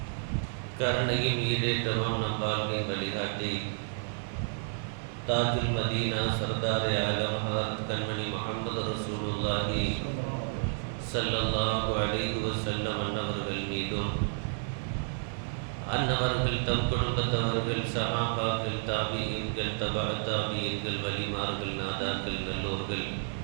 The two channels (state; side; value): silent; left; 57 dB below the other